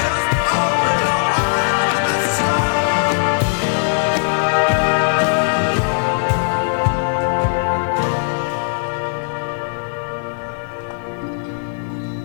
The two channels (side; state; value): right; silent; digital silence